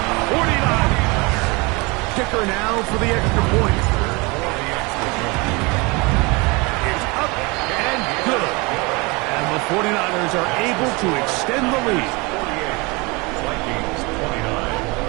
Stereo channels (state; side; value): quieter; left; 26.8 dB